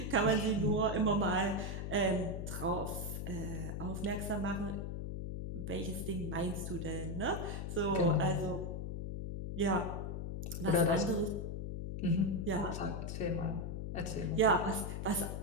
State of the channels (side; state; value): left; noise; hum, 4 dB below the sound